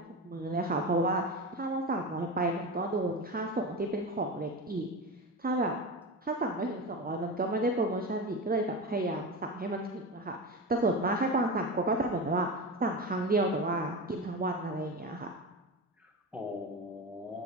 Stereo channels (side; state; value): both; normal; correlation 0.24